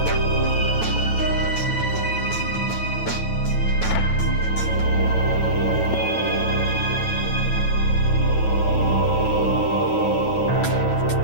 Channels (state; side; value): late; right; 9.2 ms